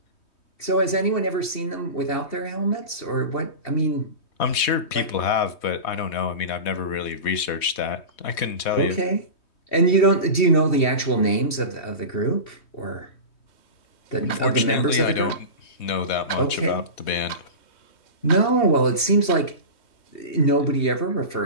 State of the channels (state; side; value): late; right; 2.7 ms